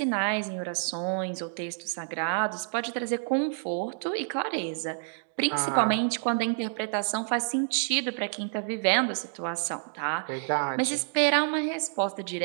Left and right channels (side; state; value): left; silent; digital silence